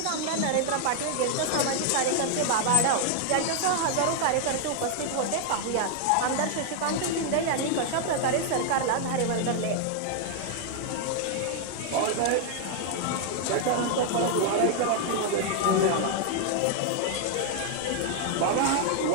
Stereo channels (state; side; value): different; both; correlation 0.00